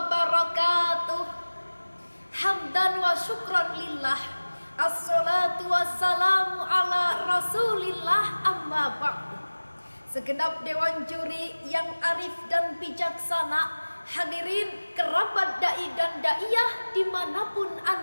Hamdan wa syukran lillah. Assalatu wassalamu ala rasulillah, amma ba'du. Segenap dewan juri yang arif dan bijaksana, hadirin kerabat da'i dan da'iyah dimanapun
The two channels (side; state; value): both; inverted; correlation -1.00